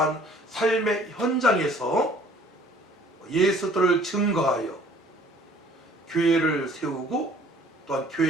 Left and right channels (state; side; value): normal; both; correlation 0.54